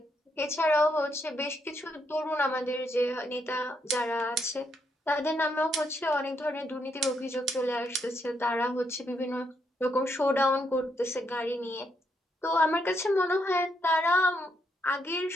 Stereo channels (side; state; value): both; normal; correlation 0.77